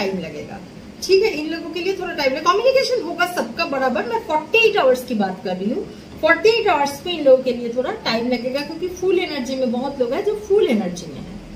लगेगा, ठीक है। इन लोगों के लिए थोड़ा टाइम लगेगा, कम्युनिकेशन होगा सबका बराबर। मैं 48 आवर्स की बात कर रही हूँ, 48 आवर्स में इन लोगों के लिए थोड़ा टाइम लगेगा, क्योंकि फुल एनर्जी में बहुत लोग हैं जो फुल एनर्जी में है।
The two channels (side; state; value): both; identical; correlation 1.00